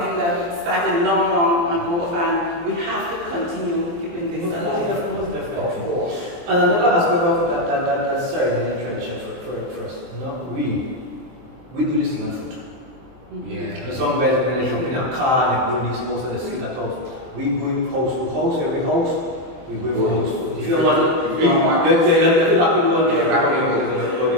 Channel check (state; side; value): late; left; 23 ms